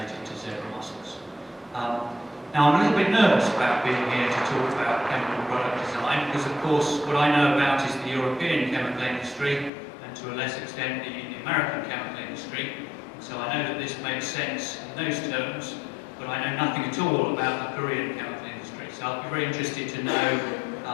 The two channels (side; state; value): right; drops out; at 9.7 s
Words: to zebra mussels. Now, I'm a little bit nervous about being here to talk about chemical product design, because of course what I know about is the European chemical industry, and to a less extent the American chemical industry. So I know that this makes sense in those terms, but I know nothing at all about the Korean chemical industry. So I'll be very interested to know